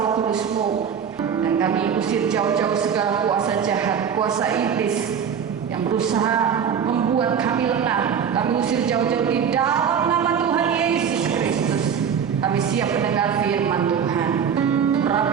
Kudus-Mu. Dan kami usir jauh-jauh segala kuasa jahat, kuasa iblis yang berusaha membuat kami lengah. Kami usir jauh-jauh di dalam nama Tuhan Yesus Kristus. Kami siap mendengar firman Tuhan.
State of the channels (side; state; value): left; quieter; 7.5 dB